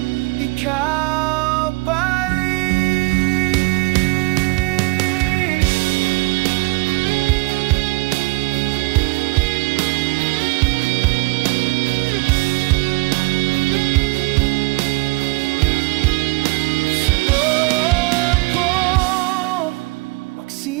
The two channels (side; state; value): left; quieter; 25.5 dB